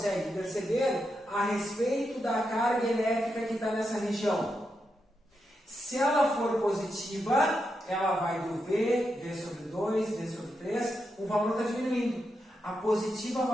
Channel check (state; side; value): normal; both; correlation 0.85